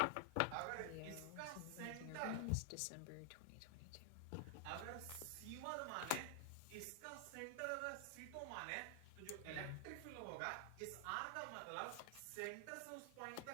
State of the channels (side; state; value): both; different; correlation 0.00